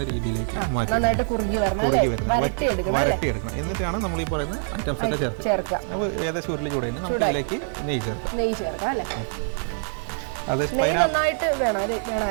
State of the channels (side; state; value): left; silent; 62 dB below the other